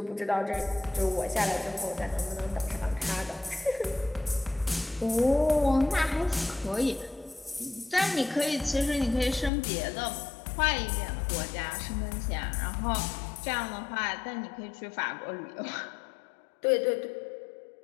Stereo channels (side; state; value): right; drops out; at 9.5 s